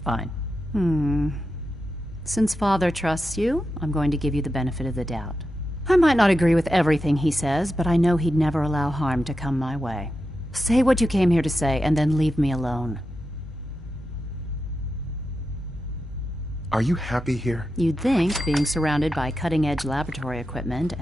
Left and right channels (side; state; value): both; normal; correlation 0.89